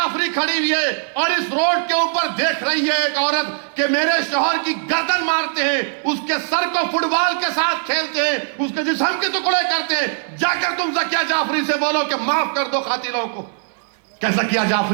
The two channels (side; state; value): left; silent; 66 dB below the other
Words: खड़ी हुई है और इस रोड के ऊपर देख रही है एक औरत कि मेरे शौहर की गर्दन मारते हैं, उसके सर को फुटबॉल के साथ खेलते हैं, उसके जिस्म के टुकड़े करते हैं। जाकर तुम जकिया जाफरी से बोलो कि माफ कर दो कातिलों को। क्या जकिया